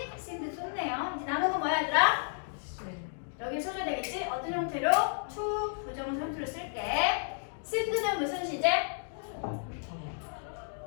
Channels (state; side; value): silent; right; digital silence